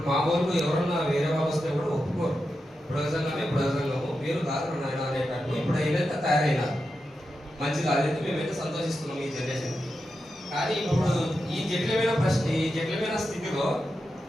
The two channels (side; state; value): both; normal; correlation 0.89